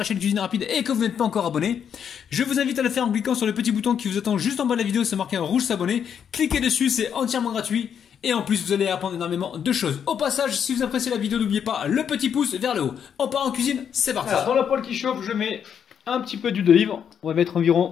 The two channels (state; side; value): quieter; right; 8.1 dB